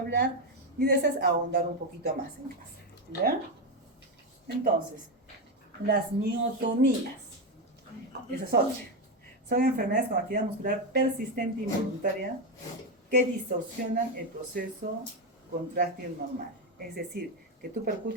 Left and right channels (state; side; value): normal; both; correlation 0.09